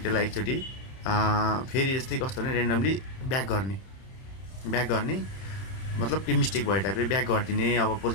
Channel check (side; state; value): right; late; 31 ms